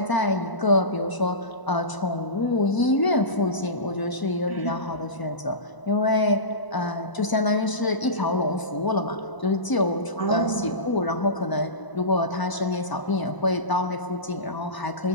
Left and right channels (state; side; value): late; right; 1.0 ms